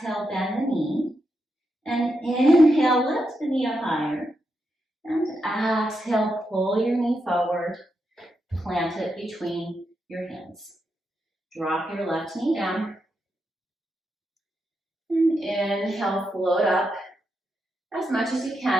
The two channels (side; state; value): both; normal; correlation 0.84